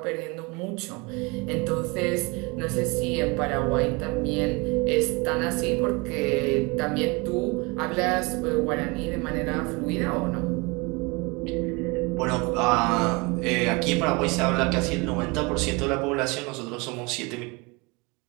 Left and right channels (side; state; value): left; quieter; 26.9 dB